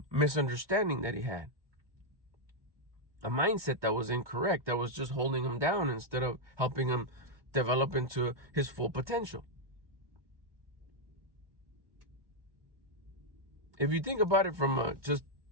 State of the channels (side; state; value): left; late; 1.2 ms